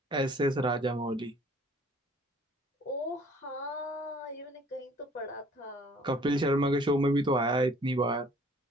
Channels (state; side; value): normal; both; correlation 0.55